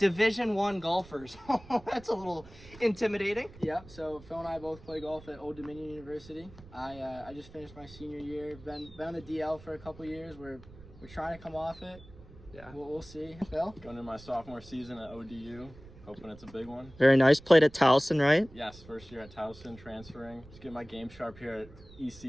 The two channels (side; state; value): right; noise; rumble, 20 dB below the sound